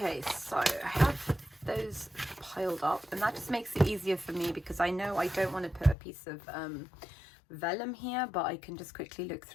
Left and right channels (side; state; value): right; drops out; at 6.0 s